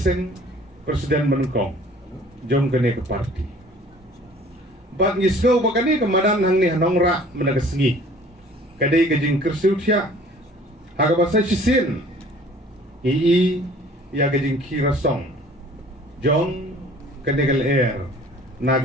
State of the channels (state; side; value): normal; both; correlation 0.51